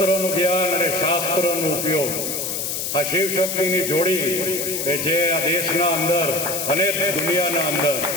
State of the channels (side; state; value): left; noise; hiss, 3 dB below the sound